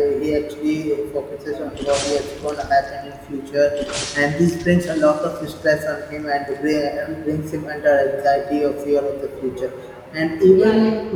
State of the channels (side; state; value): both; identical; correlation 1.00